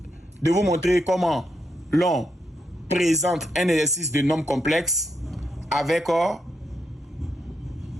de vous montrer comment l'on présente un exercice de nombre complexe avec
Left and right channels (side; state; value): both; normal; correlation 0.81